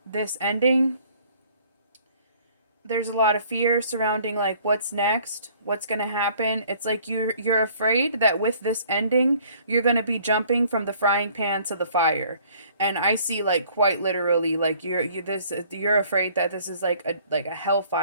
this ending. There's a lot of fear surrounding what's next, what's going to happen. It's like you're afraid that with this ending, you're going to be jumping from the frying pan to the fire. And I see quite literally you're afraid that this is like a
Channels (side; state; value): both; inverted; correlation -0.57